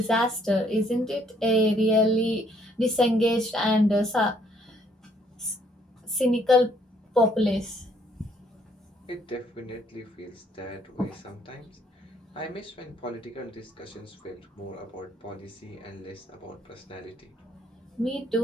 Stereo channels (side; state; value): both; normal; correlation 0.67